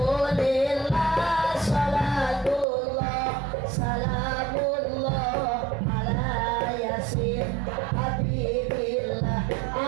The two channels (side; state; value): left; drops out; at 2.7 s